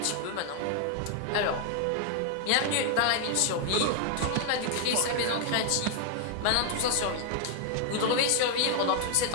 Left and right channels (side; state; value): both; different; correlation 0.00